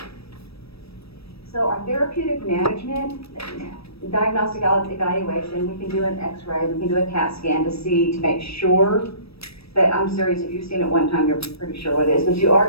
So our therapeutic management, diagnostic evaluation, we can do an x-ray, we can do a CAT scan to make sure, but I'm serious, if you've seen it one time, you're pretty sure what it is, but you are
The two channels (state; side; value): late; right; 0.78 ms